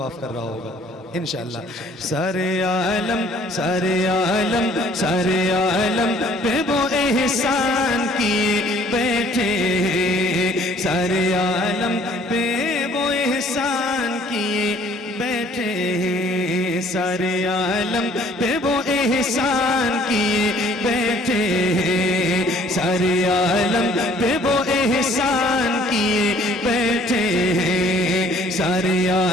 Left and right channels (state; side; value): normal; both; correlation 0.57